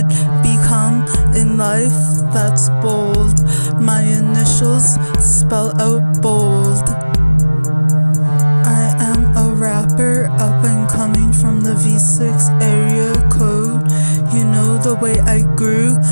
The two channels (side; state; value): both; inverted; correlation -1.00